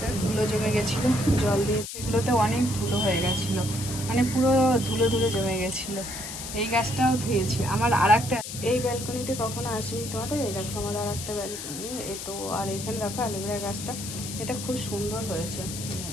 ধুলো জমে গেছিলো, জল দিয়ে এগুলোতে অনেক ধুলো হয়ে গেছিলো, মানে পুরো ধুলো ধুলো জমে গেছিলো। এই গাছটাও ধুয়েছি। আমার আর একটা, এই ব্যালকনিতে কখনো আসিনি তোমাদের। এই দেখো আমার আর একটা ব্যালকনি, এ তো। আর এখানে দেখো অ্যালোভেরা গাছটা, এটা খুব সুন্দর হয়েছে,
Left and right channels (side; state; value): left; noise; hiss, 8 dB below the sound